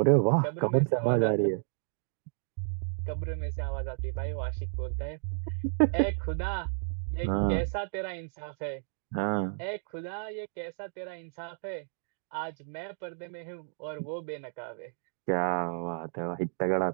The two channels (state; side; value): silent; left; digital silence